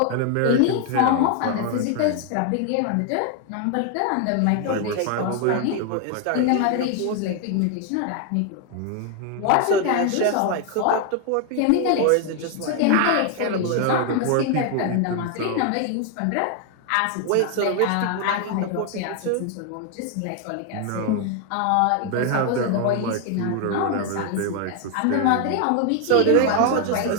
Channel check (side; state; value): both; different; correlation 0.00